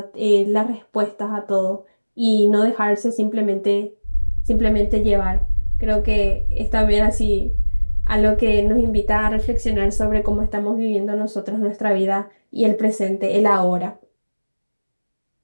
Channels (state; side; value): inverted; both; correlation -1.00